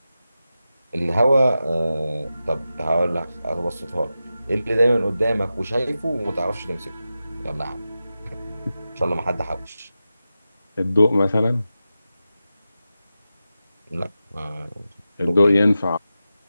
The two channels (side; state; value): both; inverted; correlation -0.92